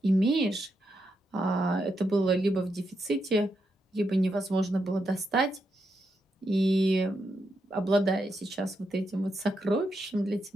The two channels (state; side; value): normal; both; correlation 0.83